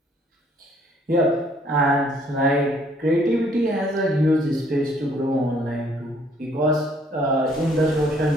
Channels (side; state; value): both; normal; correlation 0.63